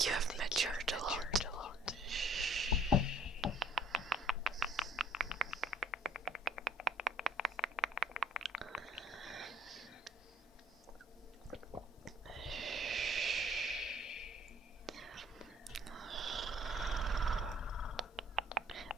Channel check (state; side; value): normal; both; correlation 0.58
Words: you have matured a lot.